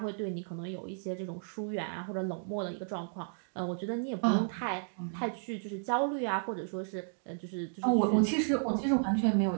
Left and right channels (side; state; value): left; silent; digital silence